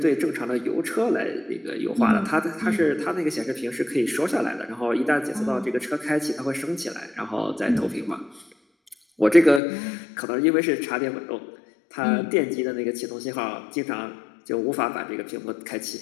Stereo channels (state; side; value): drops out; right; at 9.6 s